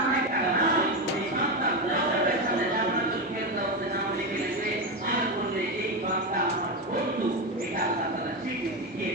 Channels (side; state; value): both; normal; correlation 0.13